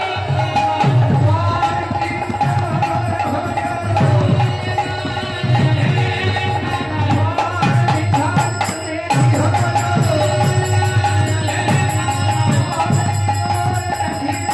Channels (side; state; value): both; identical; correlation 1.00